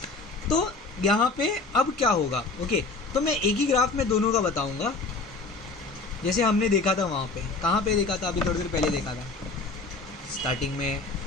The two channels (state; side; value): quieter; right; 3.7 dB